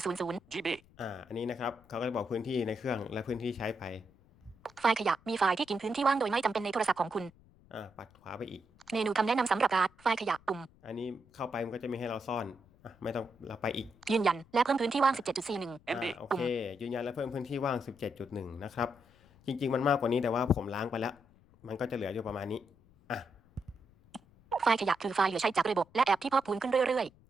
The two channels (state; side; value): noise; left; rumble, 28 dB below the sound